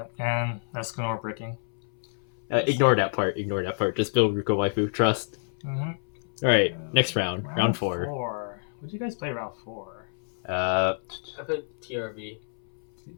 and Escanor bricking. Ignore that part. Just build Ruka Waifu. Trust. Mm-hmm. All right, next round. Round 4. What did you guys play round 4? I played TRV.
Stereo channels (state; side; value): silent; right; 59 dB below the other